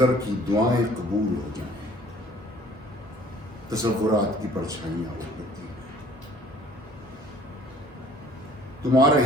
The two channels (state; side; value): normal; both; correlation 0.54